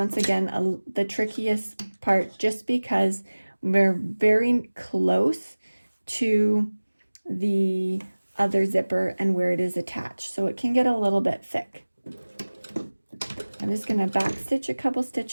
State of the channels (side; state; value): both; inverted; correlation -1.00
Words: again the trickiest part, just because we're very close to the other zipper and where it is attached, so it can get a little bit thick. I'm just going to back stitch a couple